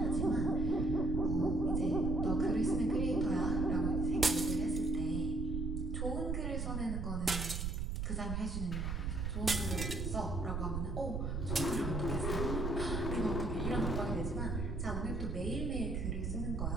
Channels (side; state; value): right; noise; rumble, 1 dB below the sound